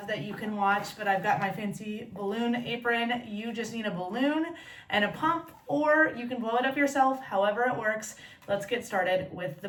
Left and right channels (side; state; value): both; identical; correlation 1.00